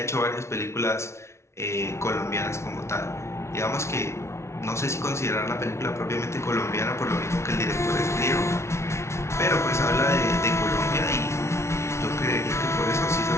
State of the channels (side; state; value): right; late; 0.13 ms